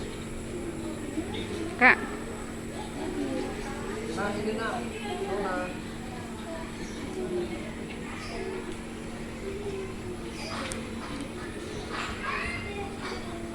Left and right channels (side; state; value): both; identical; correlation 1.00